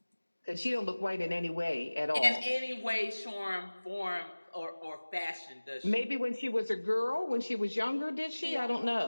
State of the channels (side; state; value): both; inverted; correlation -1.00